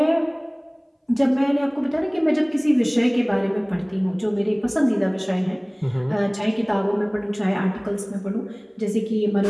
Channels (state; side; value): identical; both; correlation 1.00